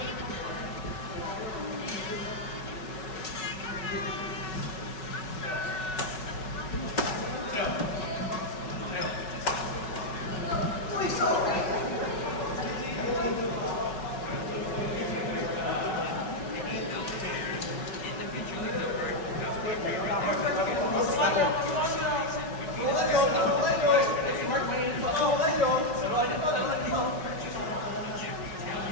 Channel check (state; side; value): late; right; 5.4 ms